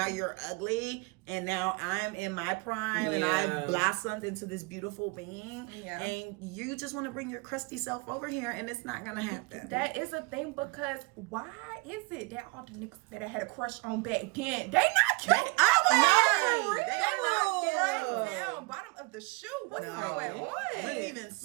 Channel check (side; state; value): left; quieter; 28.4 dB